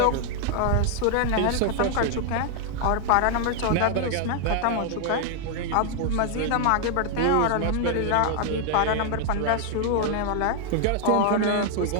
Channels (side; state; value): both; different; correlation 0.00